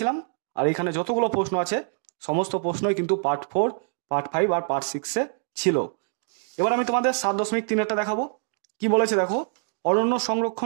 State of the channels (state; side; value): silent; left; digital silence